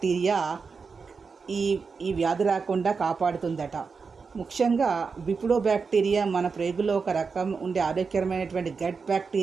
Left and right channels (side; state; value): left; quieter; 5.1 dB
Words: ఈ వ్యాధి రాకుండా కాపాడుతుందట. ముఖ్యంగా బిఫిడోబాక్టీరియా మన ప్రేగులో ఒక రకం ఉండే ఆరోగ్యకరమైనటువంటి గట్